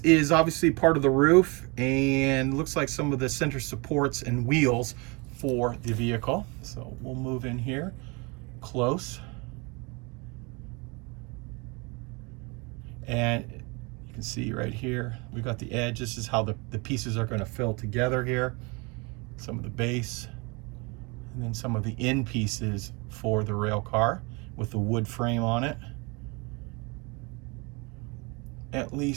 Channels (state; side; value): quieter; left; 28.8 dB